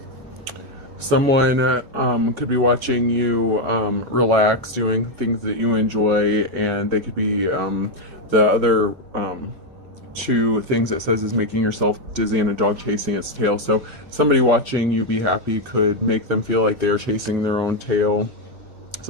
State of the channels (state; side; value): late; left; 4.5 ms